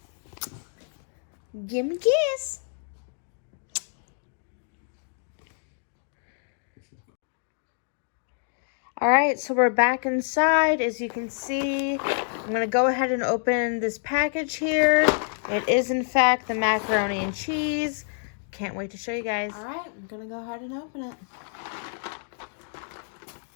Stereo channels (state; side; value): silent; right; digital silence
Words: Give me a kiss. Alright, so we're back inside. As you can see, I'm going to go ahead and open this package here. It is, in fact, the macaroni and cheese. Can't wait to show you guys. Alright, I'm going to go ahead and open it.